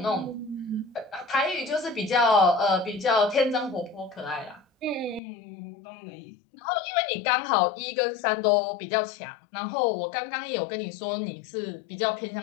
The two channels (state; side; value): drops out; right; at 5.2 s